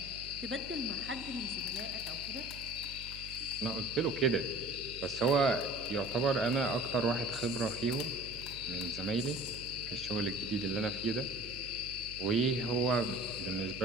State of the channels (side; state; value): right; noise; hum, 14 dB below the sound